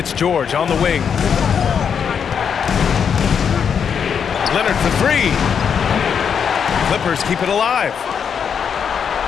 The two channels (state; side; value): quieter; right; 7.2 dB